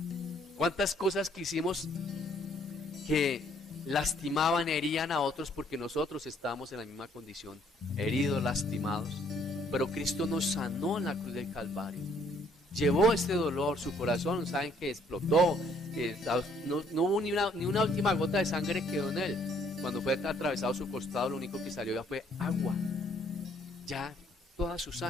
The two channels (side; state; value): both; normal; correlation 0.64